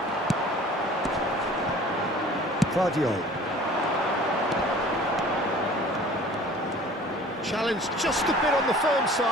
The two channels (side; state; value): both; normal; correlation 0.47